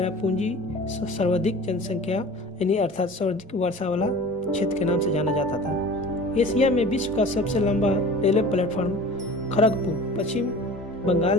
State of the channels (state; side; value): normal; both; correlation 0.41